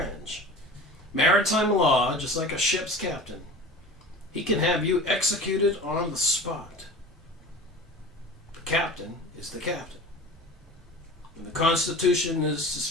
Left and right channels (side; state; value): both; normal; correlation 0.37